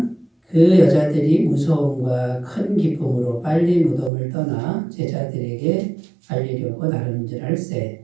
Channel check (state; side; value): drops out; left; at 4.1 s